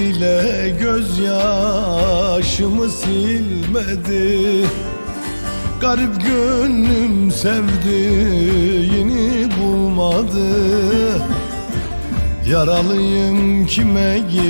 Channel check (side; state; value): both; inverted; correlation -1.00